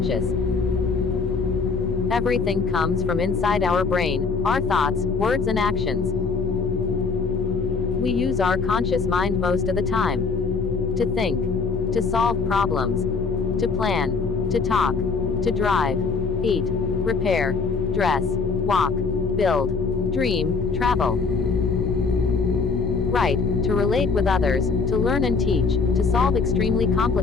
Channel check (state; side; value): quieter; right; 4.7 dB